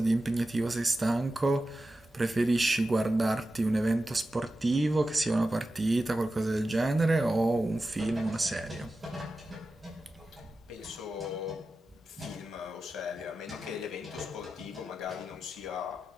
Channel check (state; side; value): normal; both; correlation 0.93